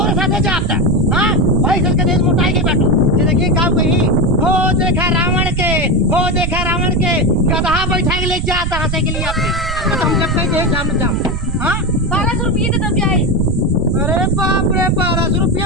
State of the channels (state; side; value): noise; right; rumble, 5 dB below the sound